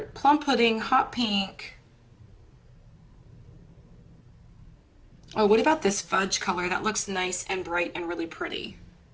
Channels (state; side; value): identical; both; correlation 1.00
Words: pink. Oh, what about this fudge color? That looks nice and bright and really pretty.